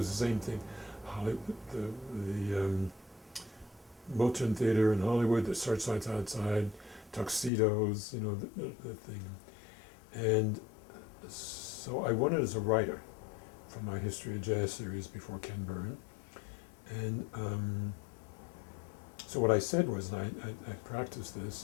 the same thing. The Moulton Theater in Hollywood, the Searchlights Outside, Tuxedos, the thing. And so I won it as a writer for my History of Jazz series before Ken Byrne. And so what I said was, and I practiced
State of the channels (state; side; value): drops out; right; at 7.5 s